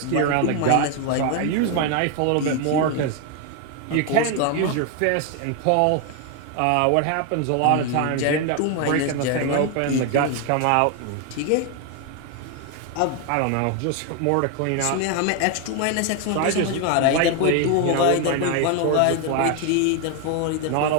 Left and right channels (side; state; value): both; different; correlation 0.01